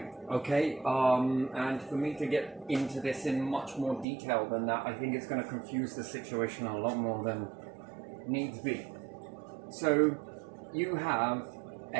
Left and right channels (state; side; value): drops out; left; at 4.0 s